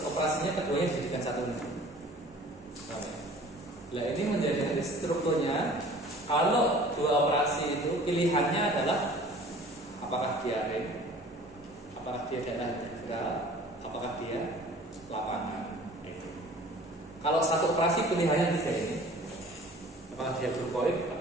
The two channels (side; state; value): both; normal; correlation 0.47